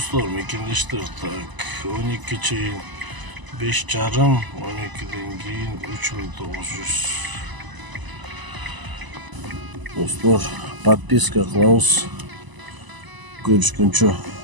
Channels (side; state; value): left; late; 1.0 ms